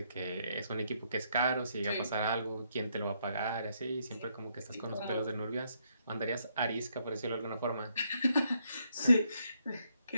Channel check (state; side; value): inverted; both; correlation -0.74